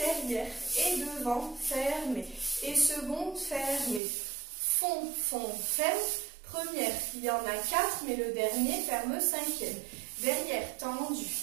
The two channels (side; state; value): left; drops out; at 4.0 s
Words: et devant, fermé. Et seconde, fermé. Fond, ferme. Première, il y en a 4, mais le dernier ferme 5e. Derrière, tendu.